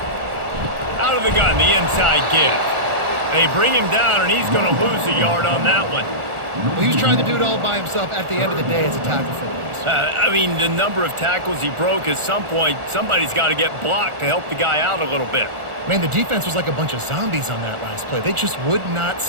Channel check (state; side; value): late; left; 1.4 ms